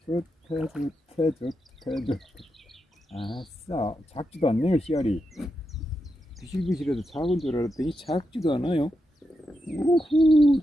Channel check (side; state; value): both; normal; correlation 0.86